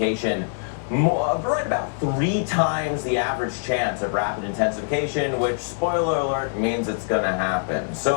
Right about 3 times the average chance of rapid intensification, which, spoiler alert, means it's going to happen.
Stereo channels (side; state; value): right; silent; digital silence